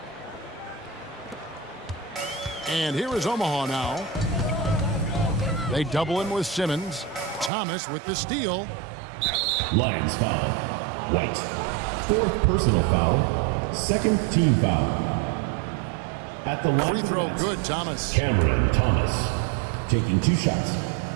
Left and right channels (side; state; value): left; drops out; at 7.5 s